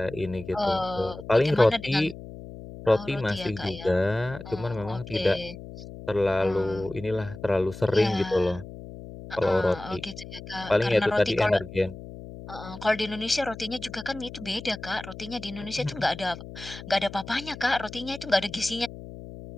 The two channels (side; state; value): left; noise; hum, 13 dB below the sound